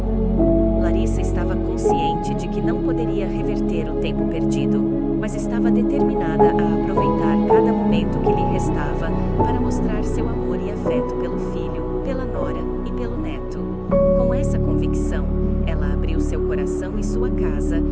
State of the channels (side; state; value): both; identical; correlation 1.00